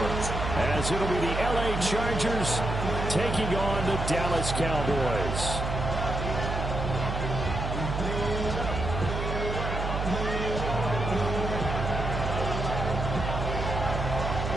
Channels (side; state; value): right; noise; hum, 3 dB below the sound